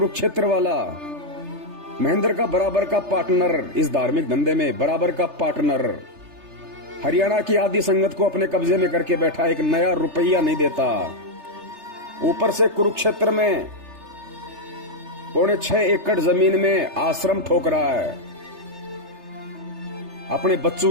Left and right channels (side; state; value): left; late; 3.3 ms